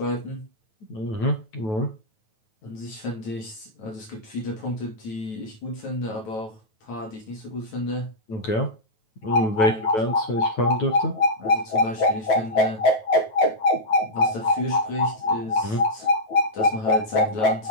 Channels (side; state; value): right; late; 9.2 ms